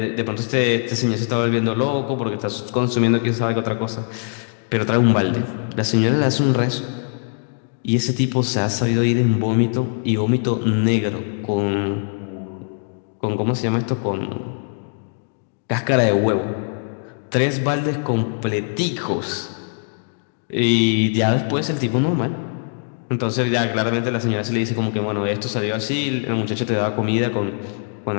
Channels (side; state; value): right; silent; digital silence